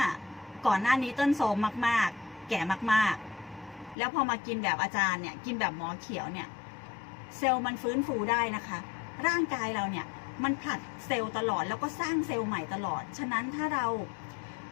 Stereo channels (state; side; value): drops out; right; at 4.0 s